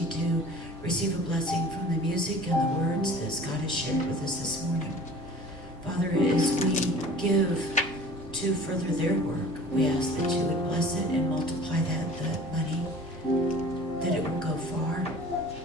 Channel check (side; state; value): both; normal; correlation 0.44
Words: to receive a blessing from the music and the words that Scott has shared with us this morning. Father, as we give to further their work, we ask that you would bless it and multiply that money, that it will go far,